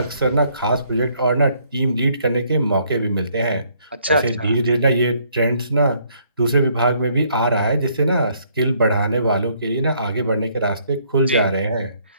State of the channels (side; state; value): both; inverted; correlation -0.67